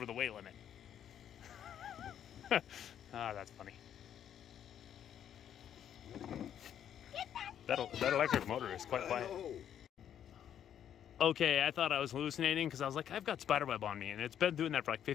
the weight limit. Ah, that's funny. That electric motor is quite quiet. Okay, I thought I was hallucinating because I was like, I've got spiderweb on me, and it's been doing that for like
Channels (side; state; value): right; quieter; 9.7 dB